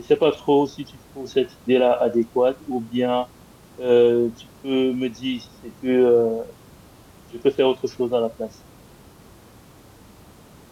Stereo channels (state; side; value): identical; both; correlation 1.00